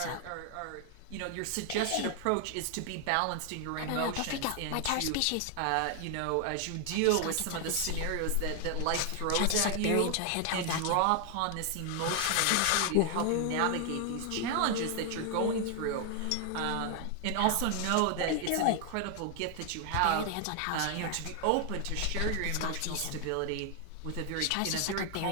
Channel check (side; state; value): both; different; correlation 0.00